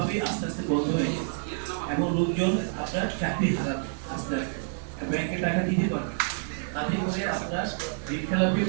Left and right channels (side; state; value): left; silent; digital silence